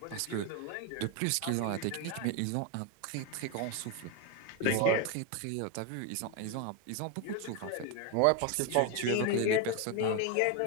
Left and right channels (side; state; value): both; different; correlation 0.02